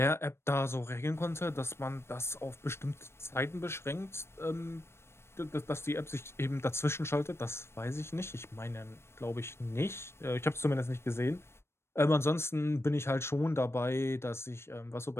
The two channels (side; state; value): right; late; 0.12 ms